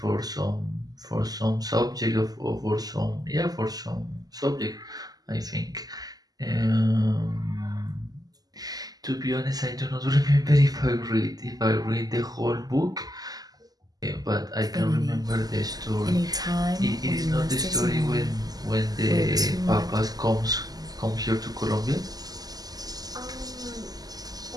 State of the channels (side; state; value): left; late; 0.18 ms